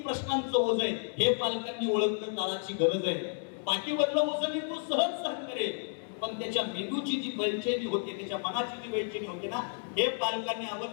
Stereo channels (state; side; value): silent; right; digital silence